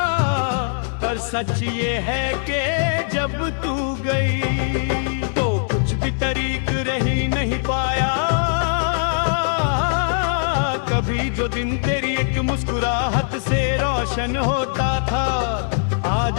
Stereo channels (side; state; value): right; silent; digital silence